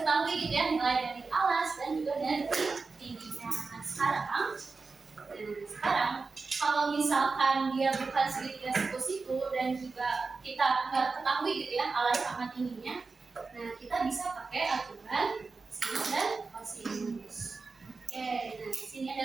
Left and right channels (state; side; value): quieter; left; 4.3 dB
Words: gitu ya, mulai dari alas dan juga dari tingginya. Nah sekarang kalau misalkan dia bukan segitiga siku-siku dan juga kita nggak ketahui gitu ya alas sama tingginya, nah kita bisa pakai aturan sinus dan kosinus. Oke, nah di sini